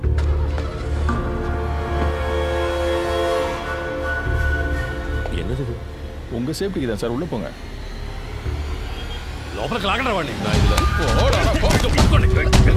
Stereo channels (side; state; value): both; identical; correlation 1.00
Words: என்னது? உங்க சேஃப்டிக்கு தான் சார், உள்ள போங்க. లోపలికి లాగండి వాడిని.